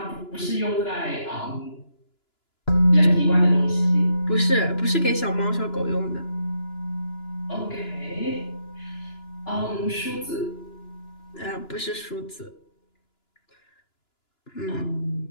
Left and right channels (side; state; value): right; late; 2.9 ms